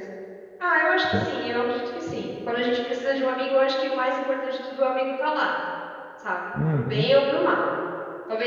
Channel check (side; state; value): both; identical; correlation 1.00